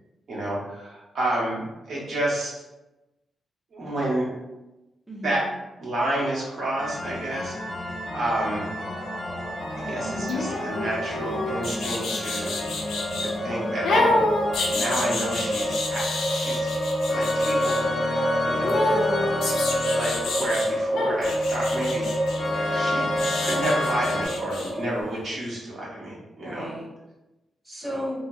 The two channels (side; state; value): both; normal; correlation 0.83